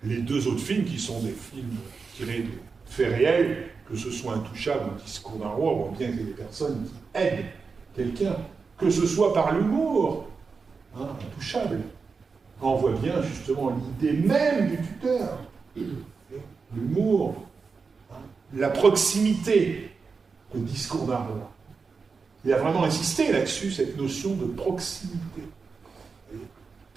les 2 autres films qui sont des films tirés de faits réels, que ce soit Intouchable ou Discours d'un roi, on voit bien qu'il y a des personnes qui aident quelqu'un, que ce soit par l'humour, Intouchable. On voit bien justement l'idée même du tuteur, l'humour, la proximité, le Discours d'un roi. Il a vraiment insisté là-dessus, cette notion de proximité,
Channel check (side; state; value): left; quieter; 4.9 dB